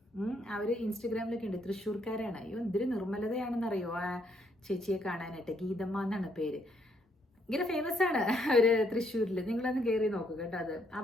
അവർ ഇൻസ്റ്റഗ്രാമിലൊക്കെ ഉണ്ട്. തൃശ്ശൂർക്കാരാണ്. അയ്യോ എന്തൊരു നിർമ്മലതയാണെന്നറിയോ ആ ചേച്ചിയെ കാണാനായിട്ട്. ഗീതമ്മ എന്നാണ് പേര്. ഇങ്ങനെ ഫേമസ് ആണ് അവര് തൃശ്ശൂരിൽ. നിങ്ങളൊന്ന് കയറി നോക്കുക കേട്ടോ. അത്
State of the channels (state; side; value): normal; both; correlation 0.72